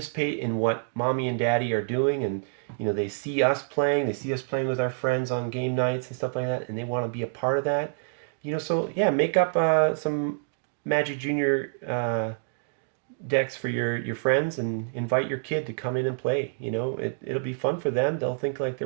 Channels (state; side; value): silent; left; digital silence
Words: in what mommy and daddy are doing, and you know, they see us playing with our friends on game nights and stuff like that, and they want to be a part of that. You know, so yeah, make up some Magic Junior decks for your friends and invite your kid to come in and play. You know, it'll be fun for them. They'll think like they're